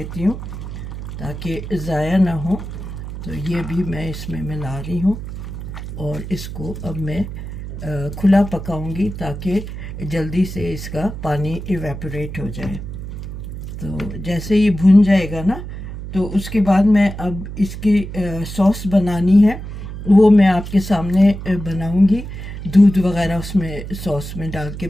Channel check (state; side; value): noise; right; hum, 9 dB below the sound